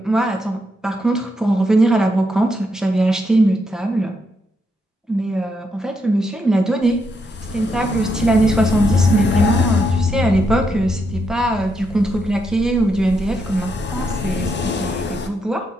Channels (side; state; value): both; normal; correlation 0.80